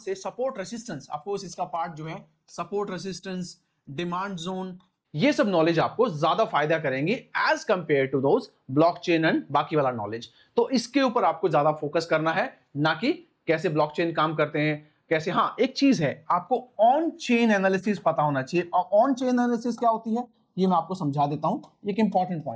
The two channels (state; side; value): identical; both; correlation 1.00